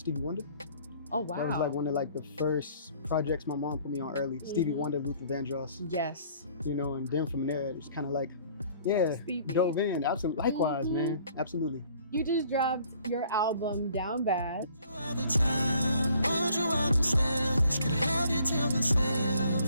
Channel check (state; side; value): inverted; both; correlation -0.58